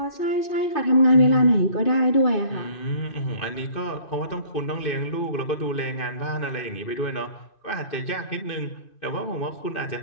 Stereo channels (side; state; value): right; late; 2.5 ms